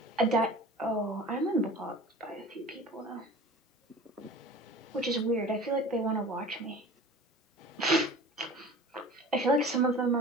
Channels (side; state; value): both; normal; correlation 0.40